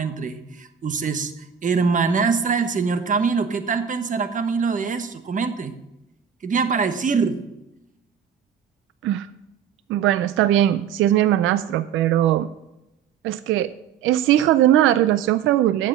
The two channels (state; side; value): quieter; left; 8.6 dB